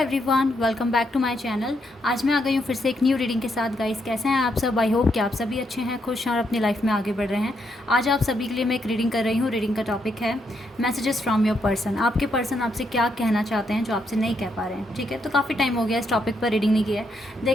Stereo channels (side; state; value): both; normal; correlation 0.78